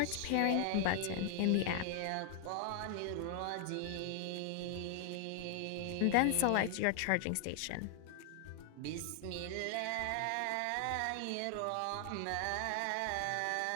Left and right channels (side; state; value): both; different; correlation 0.00